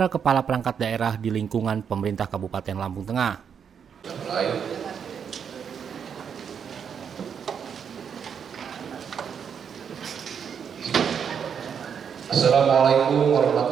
kepala perangkat daerah di lingkungan pemerintah Kabupaten Lampung Tengah. Assalamualaikum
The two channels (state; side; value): quieter; left; 7.3 dB